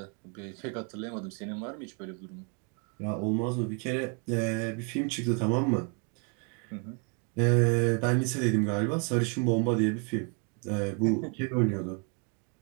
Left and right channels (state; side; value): quieter; left; 35.6 dB